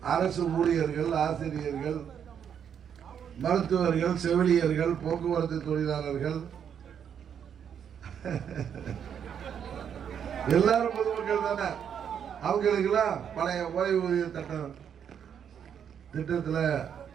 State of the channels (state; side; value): quieter; left; 8.2 dB